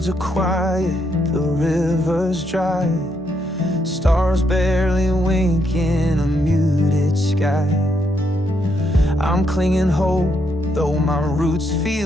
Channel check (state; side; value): normal; both; correlation 0.77